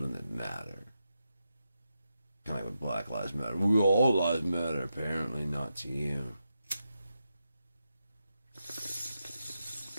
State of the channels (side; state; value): both; inverted; correlation -0.87